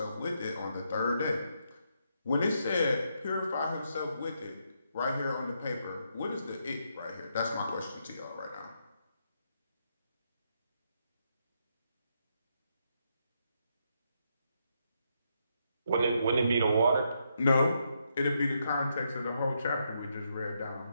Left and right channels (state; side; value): inverted; both; correlation -0.79